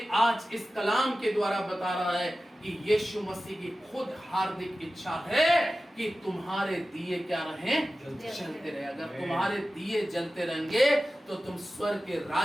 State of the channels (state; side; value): normal; both; correlation 0.95